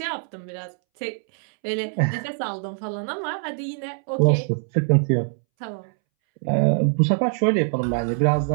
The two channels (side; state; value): left; silent; 63 dB below the other